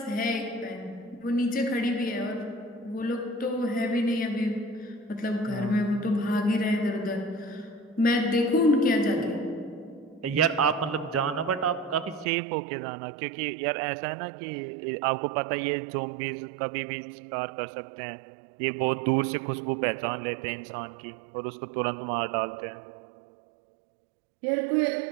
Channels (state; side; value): drops out; left; at 12.3 s